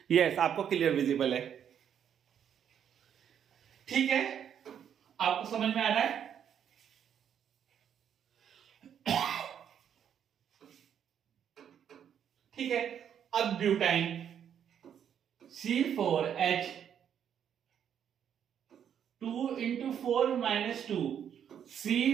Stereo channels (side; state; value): left; quieter; 8.8 dB